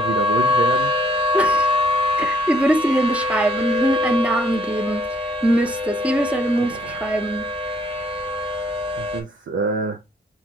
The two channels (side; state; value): both; normal; correlation 0.64